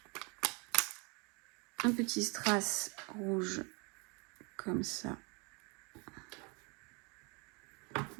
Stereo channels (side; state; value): left; quieter; 31.0 dB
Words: un petit strass rouge comme ça.